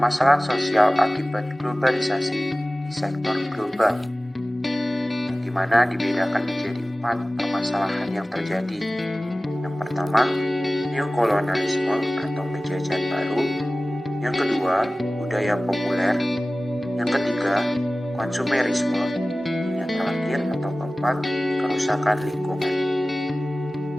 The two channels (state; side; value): normal; both; correlation 0.97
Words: sosial akibat globalisasi di sektor global, di mana dibedakan menjadi 4 permasalahan yang terjadi. Yang pertama, neokolonialisme atau penjajahan baru. Yang kedua, budaya populer. Yang ketiga, konsumerisme. Yang terakhir atau keempat, kerusakan lingkungan.